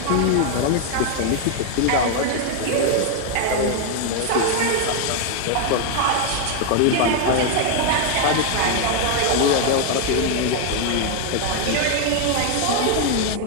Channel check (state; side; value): different; both; correlation 0.00